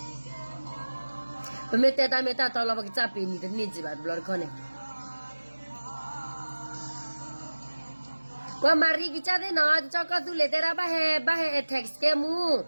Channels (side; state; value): both; inverted; correlation -1.00